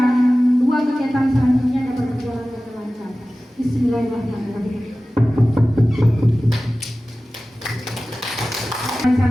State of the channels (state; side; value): normal; both; correlation 0.96